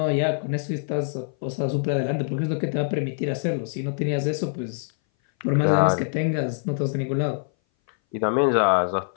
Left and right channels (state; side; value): silent; right; 59 dB below the other